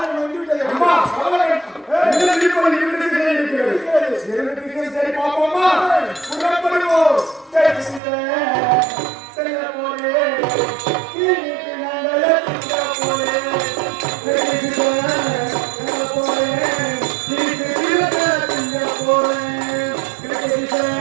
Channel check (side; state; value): left; drops out; at 8.0 s